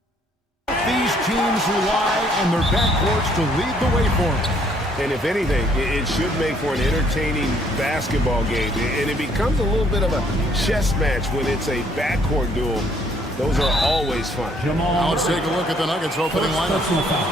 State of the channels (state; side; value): normal; both; correlation 0.65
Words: These teams rely on their backcourts to lead the way for them. And if anything, it should make for an entertaining basketball game. And it becomes a little bit of a chess match when it's a backcourt duel. Those are always fun. Now let's take a look at the Nuggets opening lineup.